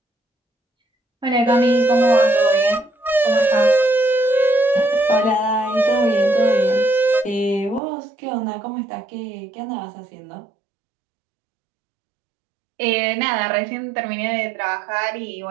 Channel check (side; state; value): left; drops out; at 7.8 s